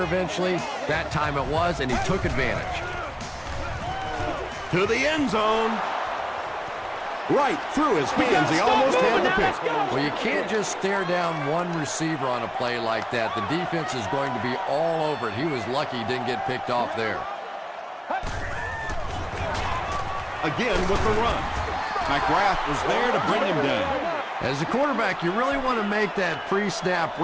eventually. That time it was, and he took advantage. To the end zone. Right through his hands. He almost had the pick. Well, you can't just stare down one receiver on a play like that. The defense is going to be all over it. He was lucky he didn't get picked off there. Again with the run. McGrath was there to bring him down. As a quarterback, you really want to make that pre-snap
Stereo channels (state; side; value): identical; both; correlation 1.00